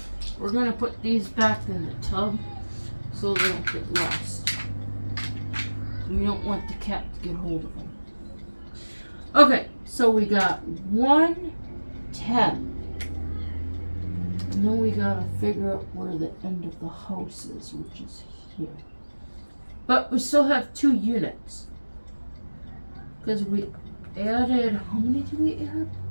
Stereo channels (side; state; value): both; inverted; correlation -1.00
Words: We're going to put these back in the tub so they don't get lost. We don't want the cat to get hold of them. Okay, so we got 1, 10. And then we got to figure out where the end of the house is, which is here. But we still have 2 units. Because we added, how many did we add?